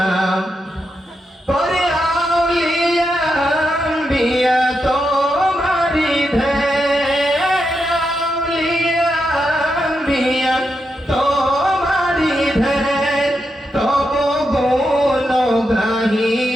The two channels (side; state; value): both; normal; correlation 0.85